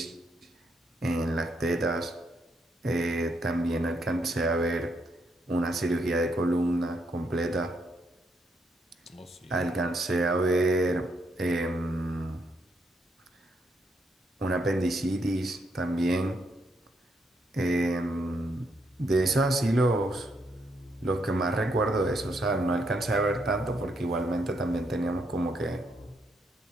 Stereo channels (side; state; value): both; normal; correlation 0.76